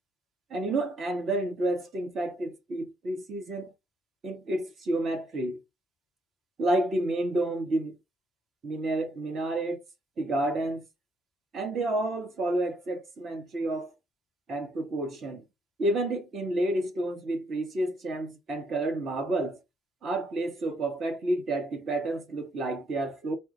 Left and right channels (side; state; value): both; normal; correlation 0.72